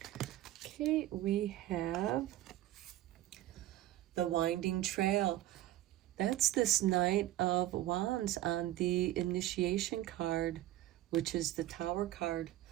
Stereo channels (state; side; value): quieter; left; 14.8 dB